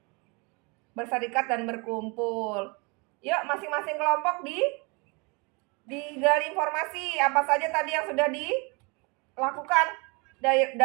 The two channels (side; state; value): left; quieter; 29.7 dB